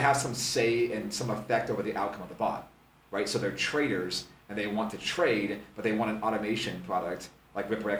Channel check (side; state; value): both; identical; correlation 1.00